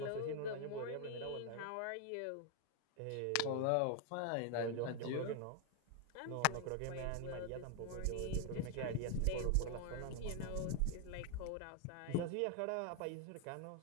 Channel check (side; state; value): both; different; correlation 0.00